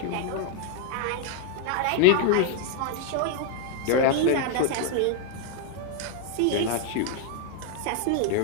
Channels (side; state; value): both; different; correlation 0.00